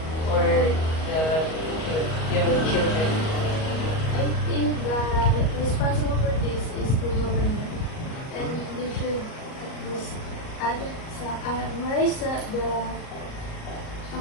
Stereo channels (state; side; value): late; right; 38 ms